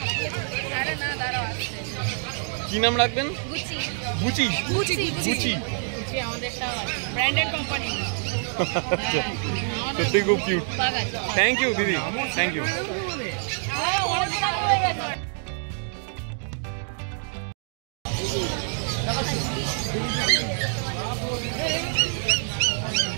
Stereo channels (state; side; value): silent; left; 56 dB below the other